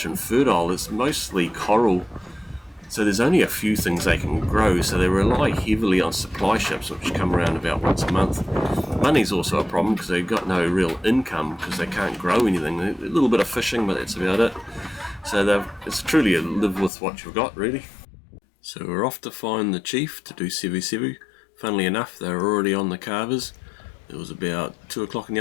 infertile. It's mostly coral, so there's only a few things they can grow, so they rely heavily on supply ships, which come around about once a month. Money's also a problem because they've got no real income because they can't grow anything. A little bit of fishing, but that's about it. So it's truly a live with what you've got, really. So we're off to find the chief to do sevu sevu. Funnily enough, they were already on the carvers. It was about 2 o'clock in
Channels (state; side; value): drops out; right; at 16.9 s